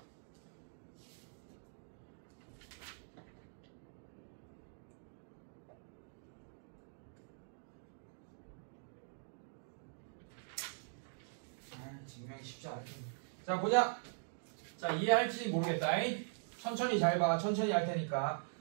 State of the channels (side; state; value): left; silent; digital silence